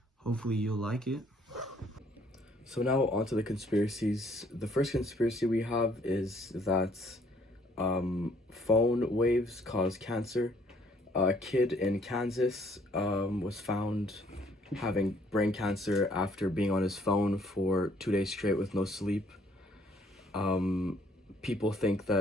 hopefully, you'll like it. So now on to the conspiracies. The first conspiracy we have is that phone waves cause cancer. A kid in Kansas was found having brain cancer after being on his phone for 2 days straight with no sleep. People think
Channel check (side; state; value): both; normal; correlation 0.63